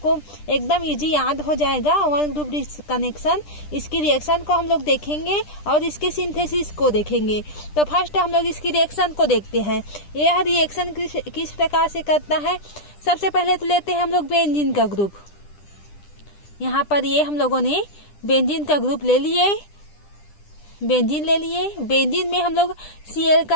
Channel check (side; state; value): right; late; 10 ms